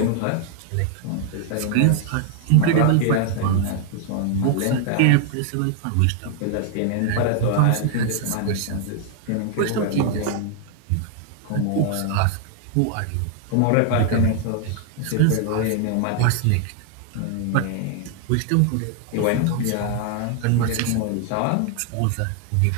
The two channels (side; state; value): both; different; correlation 0.00